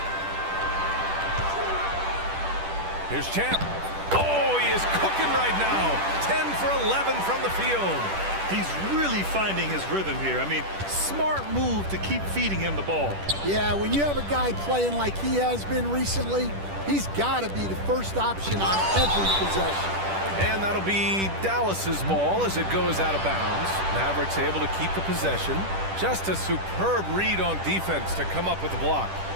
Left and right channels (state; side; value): late; left; 10 ms